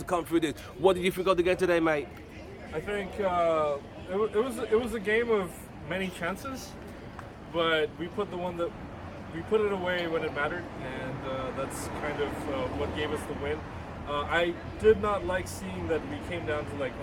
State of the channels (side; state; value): both; identical; correlation 1.00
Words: come through this. What did you think of the game today, mate? I think it was a game of many chances, but we put it away when it mattered, and that's kind of what gave us the win. I did not like seeing that we came down to like